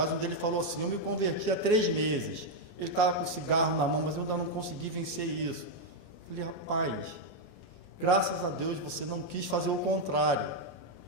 onde ele falou assim, eu me converti há 3 meses, ele estava com cigarro na mão, mas eu ainda não consegui vencer isso. Eu falei, rapaz, graças a Deus você não quis fazer o contrário.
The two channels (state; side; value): late; right; 28 ms